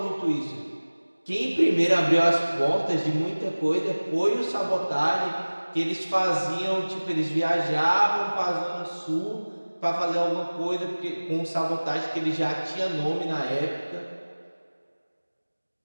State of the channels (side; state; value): both; inverted; correlation -1.00